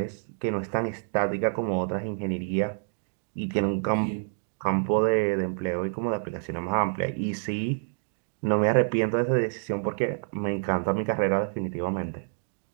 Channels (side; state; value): left; silent; digital silence